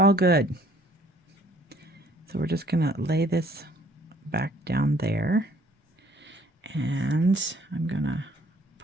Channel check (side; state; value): both; normal; correlation 0.60